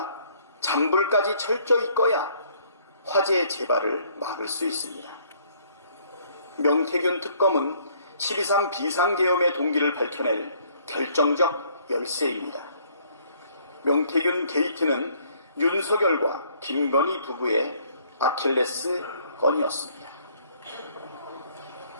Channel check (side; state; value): both; inverted; correlation -0.63